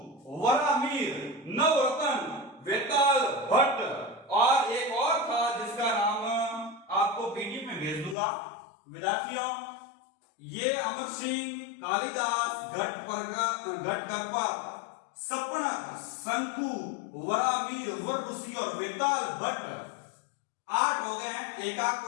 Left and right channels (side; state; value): right; drops out; at 8.2 s